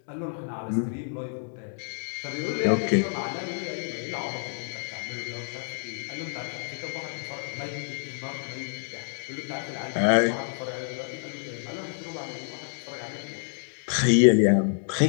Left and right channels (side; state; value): right; silent; 59 dB below the other